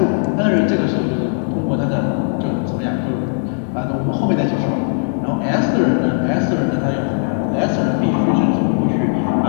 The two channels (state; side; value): silent; right; digital silence